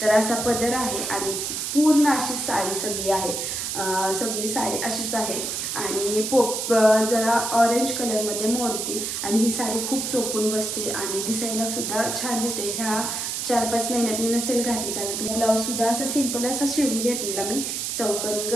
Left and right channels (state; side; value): noise; right; hiss, 3 dB below the sound